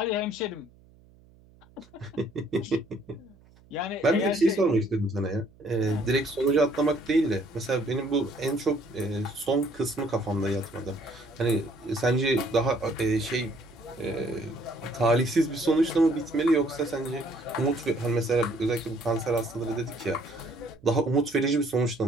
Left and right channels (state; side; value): noise; right; hum, 27 dB below the sound